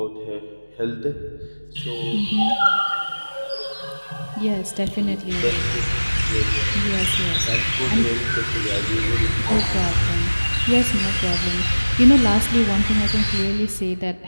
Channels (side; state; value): both; inverted; correlation -1.00